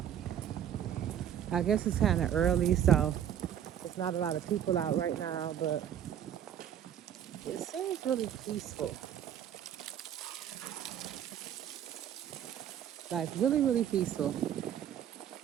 I guess it's kind of early, so there's not a lot of people out right now, but it seems really peaceful. Like, really, really peaceful. These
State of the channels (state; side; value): quieter; left; 9.9 dB